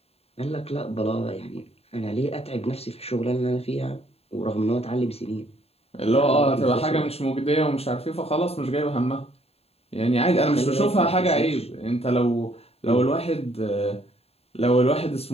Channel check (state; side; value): late; right; 0.29 ms